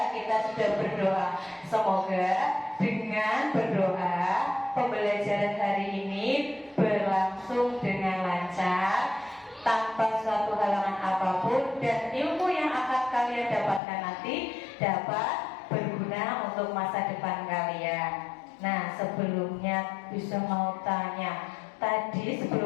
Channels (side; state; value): right; drops out; at 13.8 s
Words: Kita sudah berdoa. Semoga dengan berdoa pembelajaran hari ini berlangsung dengan lancar, tanpa suatu halangan apapun, dan ilmu yang akan kalian dapatkan nanti dapat berguna untuk masa depan kalian. Nah, sebelumnya bisa mau tanya, tadi